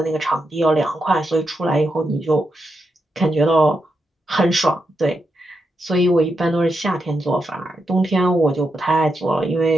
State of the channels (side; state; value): both; normal; correlation 0.84